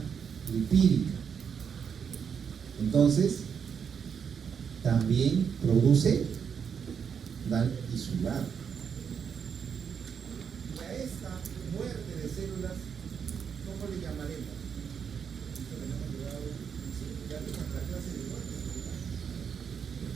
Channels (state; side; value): quieter; left; 7.1 dB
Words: lipídica. Entonces, también produce daño tisular. Y a esta muerte de células, ¿cómo le llamaremos? Esto que no hemos llegado, ya vimos la clase de muerte celular.